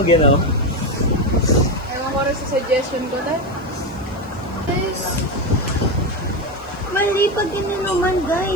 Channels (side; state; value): left; noise; hiss, 29 dB below the sound